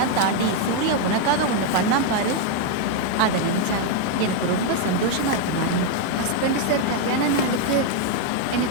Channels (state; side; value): different; both; correlation 0.01